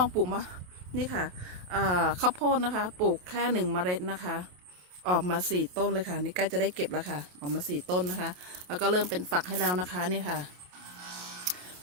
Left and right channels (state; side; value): late; left; 28 ms